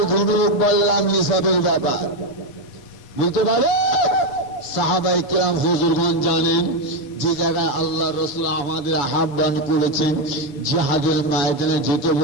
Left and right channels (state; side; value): late; right; 7.3 ms